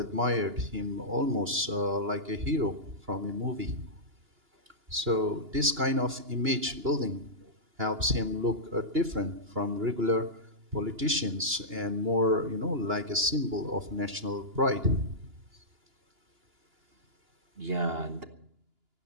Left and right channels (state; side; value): late; left; 2.9 ms